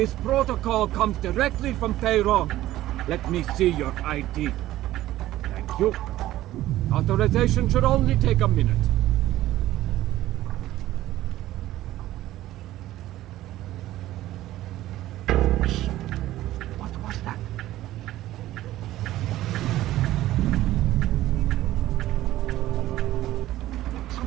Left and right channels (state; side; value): quieter; left; 14.9 dB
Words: protocol comes directly from Tehran. Let me see your ID. Thank you. Authorization should only take a minute. What was that?